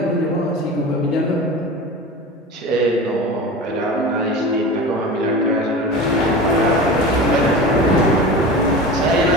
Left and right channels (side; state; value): both; normal; correlation 0.32